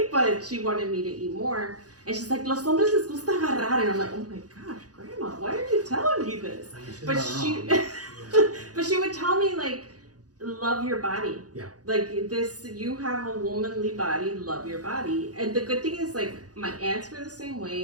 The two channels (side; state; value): left; late; 0.68 ms